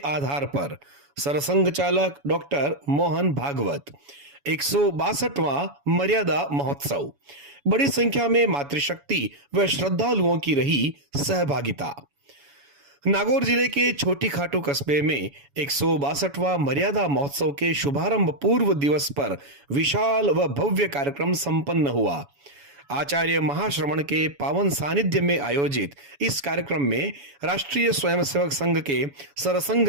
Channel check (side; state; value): left; late; 7.1 ms